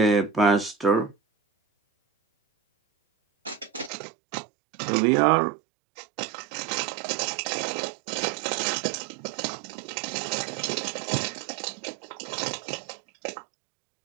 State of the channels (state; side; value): drops out; left; at 3.9 s